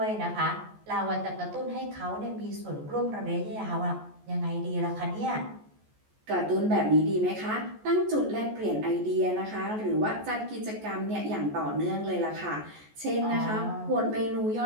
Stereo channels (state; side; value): late; left; 14 ms